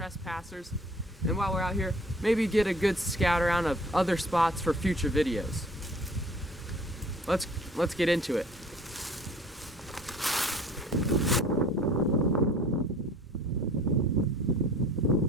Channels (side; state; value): both; normal; correlation 0.50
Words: and while we're out here, maybe get a good scout around of other spots for future videos. Let's get into it.